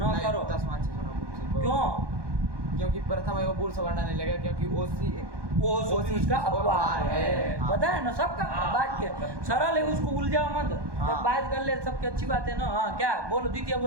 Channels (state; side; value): late; left; 1.2 ms